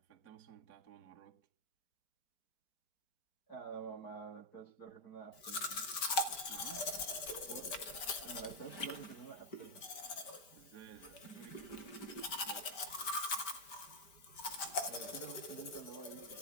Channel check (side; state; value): right; late; 4.4 ms